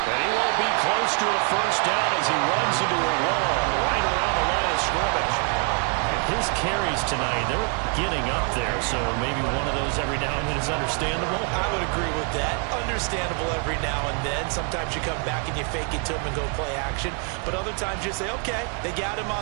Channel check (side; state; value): left; quieter; 38.5 dB